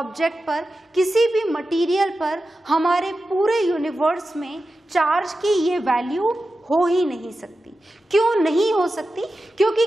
पर, किसी भी मटेरियल पर, हमारे पूरे यूनिवर्स में चार्ज की ये वैल्यू हो ही नहीं सकती। क्यों नहीं हो सकती? क्योंकि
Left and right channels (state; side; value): normal; both; correlation 0.92